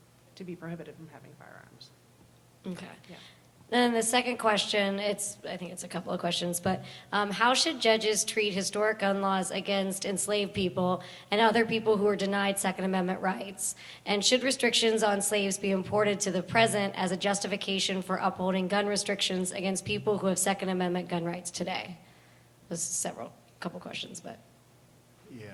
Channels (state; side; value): identical; both; correlation 1.00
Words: to be prohibited from having firearms. Okay. Yeah. Then the second question, I think it's a couple of questions, but how should judges treat historic gun laws against enslaved people and other people who are denied Second Amendment rights? And should restrictions on slaves be imported to the present as a justification for upholding gun restrictions against people who have Second Amendment gun rights today? There's couple questions, but. Yeah,